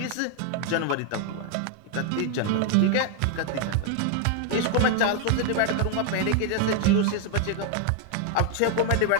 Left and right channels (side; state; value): both; different; correlation 0.00